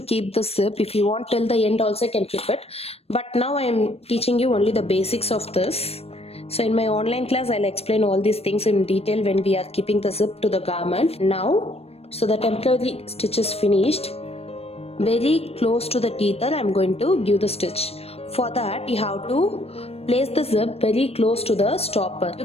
keep the zip. If you want till the end also you can keep it. But now I am teaching you only the basics of this. So in my online class I'll explain all these things in detail when we are keeping the zip to the garment. Now, so the temporary stitch is finished. Very close to the tether I'm going to give the stitch. For that you have to place the zip very close to the stopper. You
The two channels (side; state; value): right; late; 0.29 ms